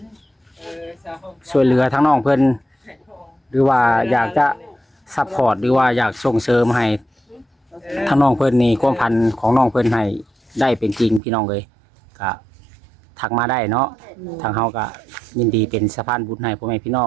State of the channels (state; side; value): drops out; left; at 11.2 s